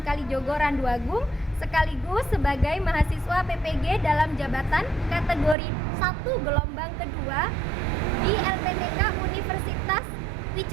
Kalijogo Randu Agung, sekaligus sebagai mahasiswa PPG dalam jabatan kategori 1 gelombang kedua di LPTK Universitas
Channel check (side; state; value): left; drops out; at 5.6 s